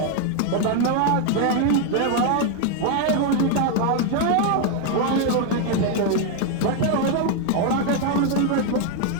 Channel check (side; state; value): both; different; correlation 0.01